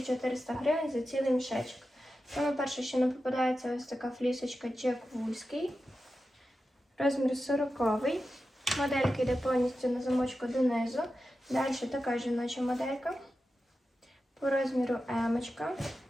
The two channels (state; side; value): normal; both; correlation 0.91